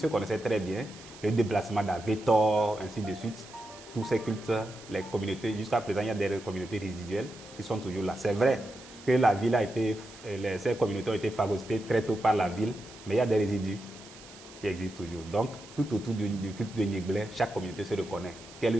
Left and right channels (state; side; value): noise; right; hiss, 19 dB below the sound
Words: connaissaient très bien. Le déplacement d'Avetor, ainsi de suite. Tous ces cultes, les communautés, jusqu'à présent, il y a des communautés résiduelles qui sont toujours là. C'est vrai que la ville ces communautés ont été phagocytées très tôt par la ville, mais il y a des résidus qui existent toujours. Donc, tout autour du culte de Nyingblé, chaque communauté se reconnaît.